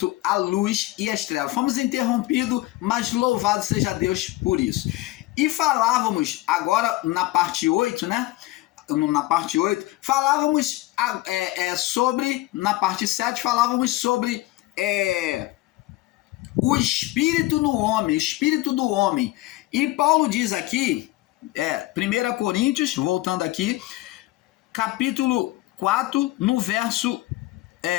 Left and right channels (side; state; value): right; quieter; 18.1 dB